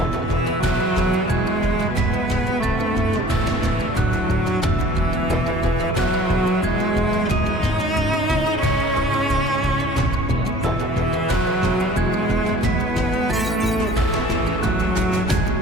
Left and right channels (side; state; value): both; normal; correlation 0.49